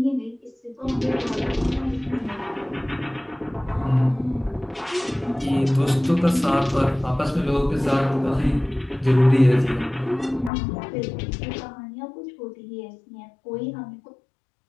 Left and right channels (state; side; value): drops out; right; at 10.5 s